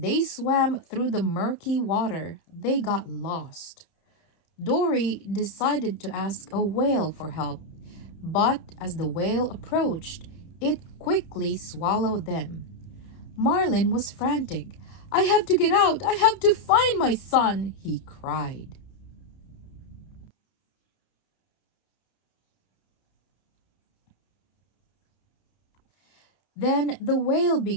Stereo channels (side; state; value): right; late; 31 ms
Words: swam through the murky water, they got lost. Dory decided to ask a whale for help, but as the whale approached, it quickly swallowed them. Marlin was frantic. I have to get out! I have to find my son! He cried. Then the whale